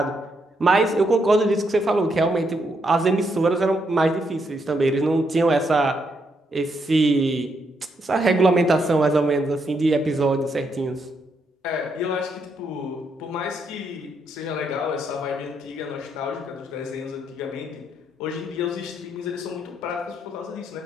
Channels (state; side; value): normal; both; correlation 0.77